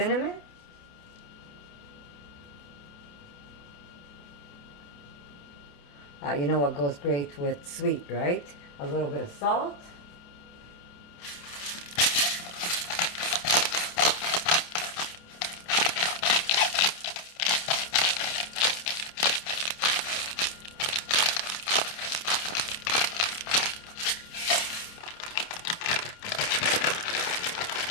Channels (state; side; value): late; right; 28 ms